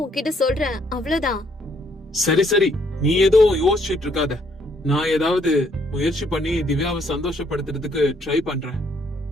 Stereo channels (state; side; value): normal; both; correlation 0.68